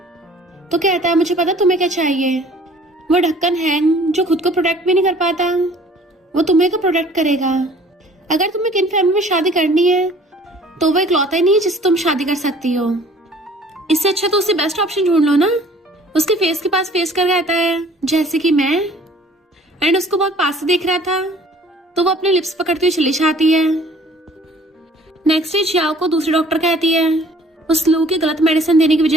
तो कहता है मुझे पता तुम्हें क्या चाहिए। वो ढक्कन हैंग जो खुद को प्रोटेक्ट भी नहीं कर पाता, वो तुम्हें को प्रोटेक्ट करेगा। अगर तुम्हें किन फैमिली में शादी करनी है तो वो इकलौता ही नहीं है जिससे तुम शादी कर सकती हो। इससे अच्छा तो उसे बेस्ट ऑप्शन ढूंढ लो ना। उसके फेस के पास फेस कर रहता है जैसे कि मैं, एंड उसको बहुत पास से देख रहा था, तो वो अपने लिप्स पकड़ती हुई चली जाती है। नेक्स्ट डे जियाओ को दूसरी डॉक्टर कहती है उस लू की गलत मेडिसिन देने की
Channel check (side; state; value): both; normal; correlation 0.53